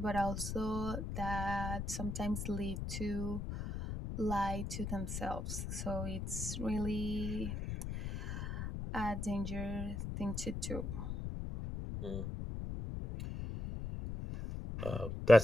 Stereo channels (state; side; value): noise; left; rumble, 4 dB below the sound